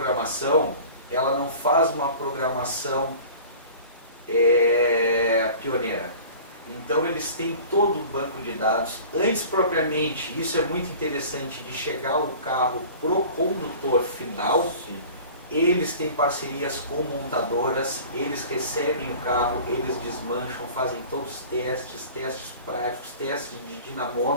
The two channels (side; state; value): both; inverted; correlation -0.42